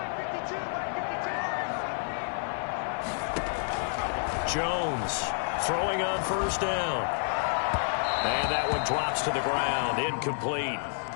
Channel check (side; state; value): right; silent; 58 dB below the other